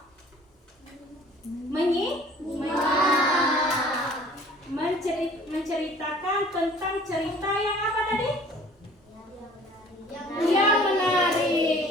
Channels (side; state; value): both; normal; correlation 0.50